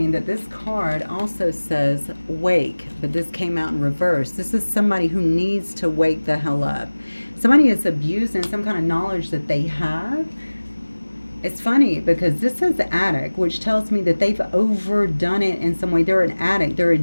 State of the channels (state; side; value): inverted; both; correlation -1.00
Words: that this card also says wake, but this came out in reverse. This is somebody who needs to wake the hell up. Somebody is abusing some kind of knowledge that they have. It's funny because this says addict, which tells me that they've overdone it in some way. They're an addict. They're